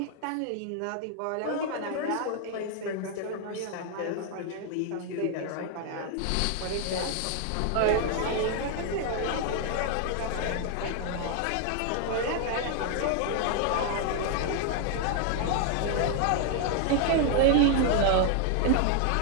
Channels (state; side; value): different; both; correlation 0.00